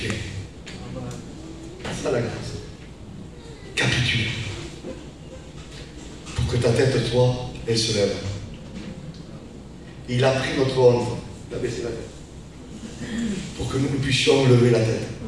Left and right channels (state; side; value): identical; both; correlation 1.00